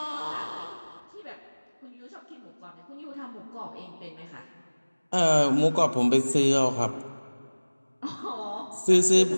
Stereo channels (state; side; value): inverted; both; correlation -1.00